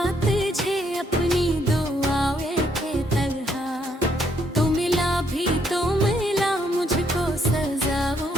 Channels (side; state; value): both; normal; correlation 0.72